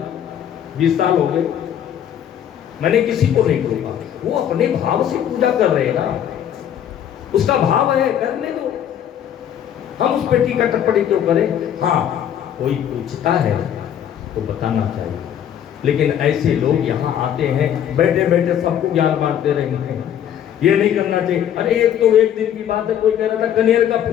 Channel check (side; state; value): right; quieter; 9.9 dB